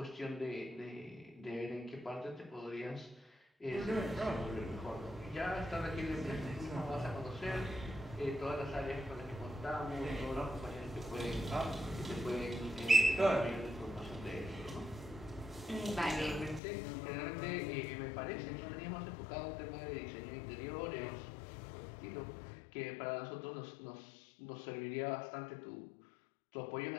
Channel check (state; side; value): drops out; right; at 16.6 s